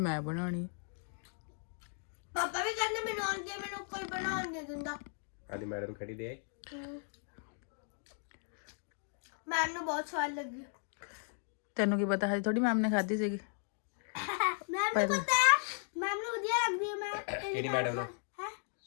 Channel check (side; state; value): right; silent; 54 dB below the other